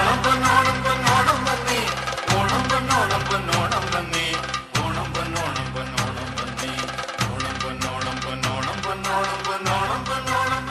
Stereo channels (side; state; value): both; identical; correlation 1.00